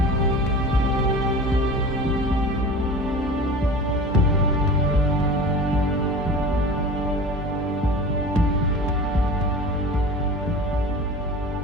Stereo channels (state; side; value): normal; both; correlation 0.36